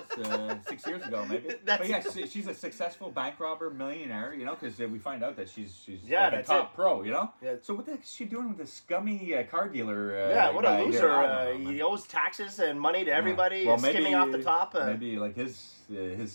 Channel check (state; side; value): inverted; both; correlation -1.00